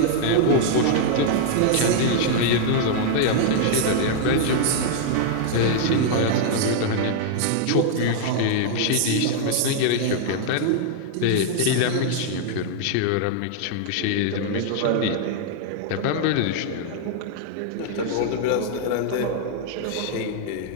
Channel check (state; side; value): different; both; correlation -0.01